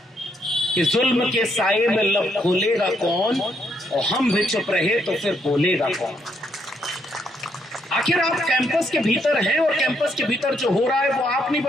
कि जुल्म के साए में लब खोलेगा कौन, और हम भी चुप रहे तो फिर बोलेगा कौन। आखिर आप कैंपस के भीतर हैं और कैंपस के भीतर जो हो रहा है वो आप नहीं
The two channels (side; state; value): both; normal; correlation 0.74